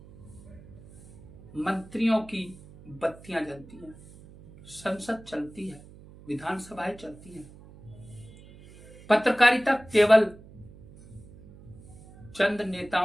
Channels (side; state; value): right; noise; hum, 21 dB below the sound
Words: मंत्रियों की बत्तियां जलती हैं, संसद चलती है, विधानसभाएं चलती हैं। पत्रकारिता केवल चंद